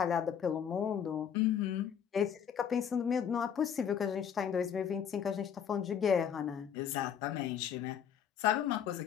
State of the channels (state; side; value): quieter; right; 8.2 dB